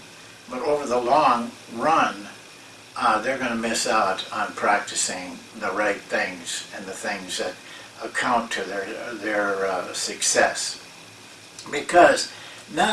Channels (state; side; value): identical; both; correlation 1.00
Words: but over the long run, they're going to miss out on practicing the right things and the things that account to their success. Because